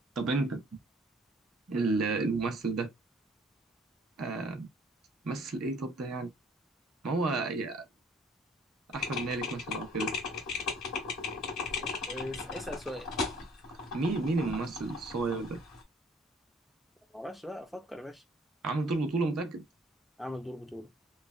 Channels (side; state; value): both; normal; correlation 0.57